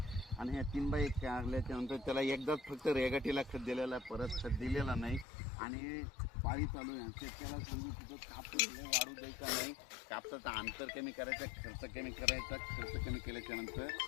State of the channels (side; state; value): right; drops out; at 5.2 s